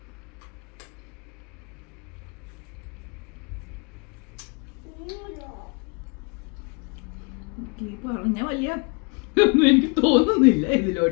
പറഞ്ഞ വലിയ ഒന്നും എനിക്ക് തോന്നുന്നില്ല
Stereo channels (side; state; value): right; quieter; 32.6 dB